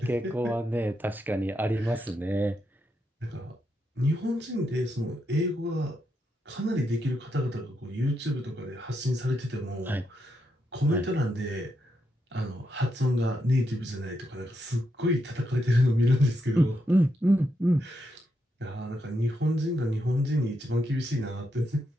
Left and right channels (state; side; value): normal; both; correlation 0.82